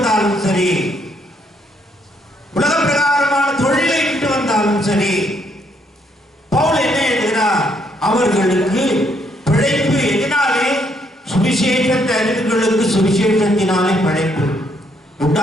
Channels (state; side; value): normal; both; correlation 0.72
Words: சரி, உலக பிரகாரமான தொழிலை விட்டு வந்தாலும் சரி, பவுல் என்ன எழுதுகிறார்? அவர்களுக்கு பிழைப்பு எதனாலே? சுவிசேஷத்தை அறிவுகளுக்கு சுவிசேஷத்தினாலே படைப்பு